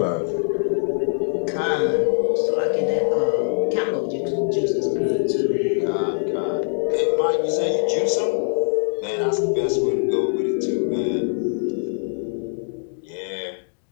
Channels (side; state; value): right; silent; digital silence